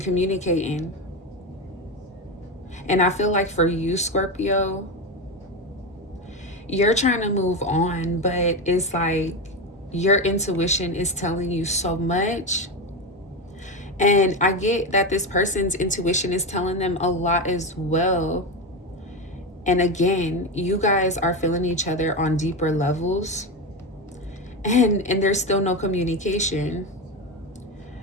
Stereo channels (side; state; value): both; normal; correlation 0.17